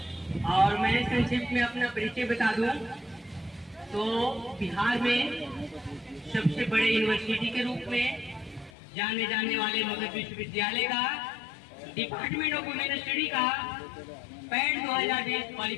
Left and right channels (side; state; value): right; drops out; at 8.7 s